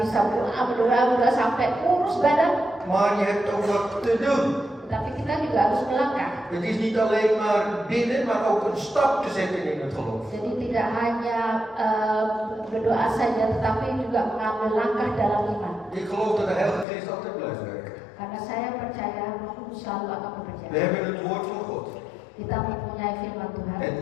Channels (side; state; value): right; drops out; at 16.9 s